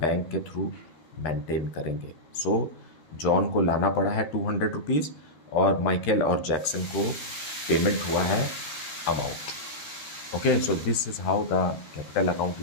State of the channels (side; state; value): right; late; 13 ms